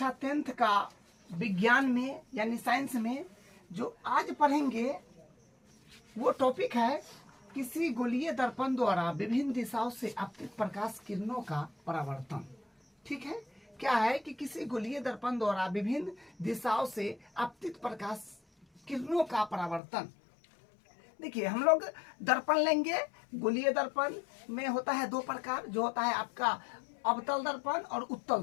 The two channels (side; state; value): right; drops out; at 19.8 s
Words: 10th का विज्ञान में यानी साइंस में जो आज पढ़ेंगे वो टॉपिक है किसी गोलीय दर्पण द्वारा विभिन्न दिशाओं से आपतित प्रकाश किरणों का परावर्तन। ठीक है, क्या है कि किसी गोलीय दर्पण द्वारा विभिन्न दिशाओं से आपतित प्रकाश किरणों का परावर्तन। देखिए, हम लोग दर्पण लेंगे। गोलीय दर्पण में होता है दो प्रकार, जो होता है आपका अवतल दर्पण और उत्तल